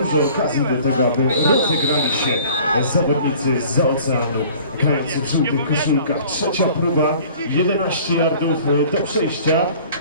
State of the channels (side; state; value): both; inverted; correlation -0.49